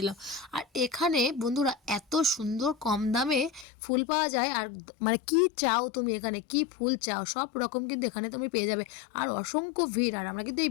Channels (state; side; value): drops out; right; at 3.7 s